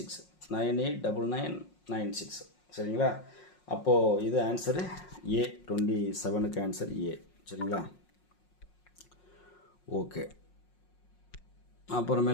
989996. சரிங்களா, அப்போது இது ஆன்சரு ஏ, 27க்கு ஆன்சர் ஏ. சரிங்களா, ஓகே.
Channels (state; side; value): late; right; 5.5 ms